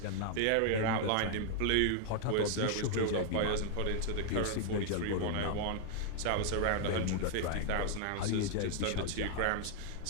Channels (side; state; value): both; different; correlation 0.00